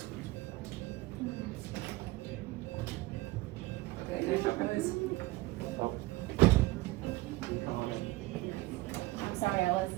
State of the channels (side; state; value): left; quieter; 19.9 dB